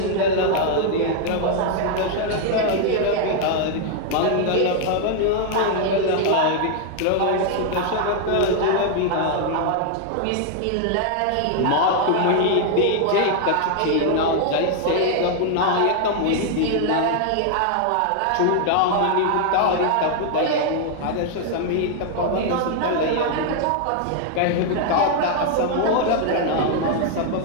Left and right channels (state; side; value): different; both; correlation 0.00